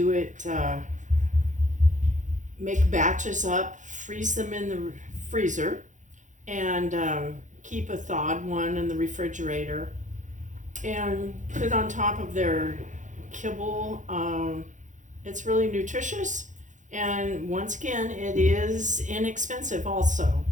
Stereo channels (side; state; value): left; late; 0.36 ms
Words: it, make batches up, freeze them in the freezer, and keep a thawed one in the refrigerator and put it on top of their kibble. It's really nutritious, and once again, it is inexpensive also.